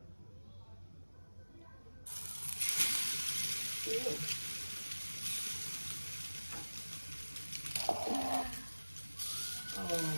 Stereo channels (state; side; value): inverted; both; correlation -1.00